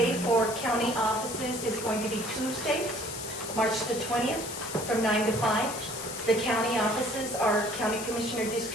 for county offices is going to be Tuesday, March the 20th, from 9 to 5. The county offices are County Commissioner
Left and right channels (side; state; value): left; noise; hiss, 8 dB below the sound